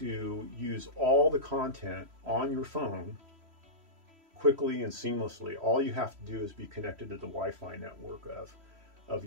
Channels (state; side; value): late; left; 3.1 ms